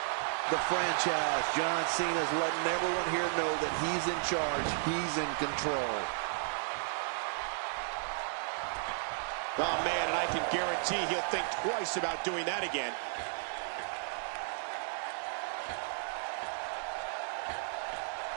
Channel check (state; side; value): silent; left; digital silence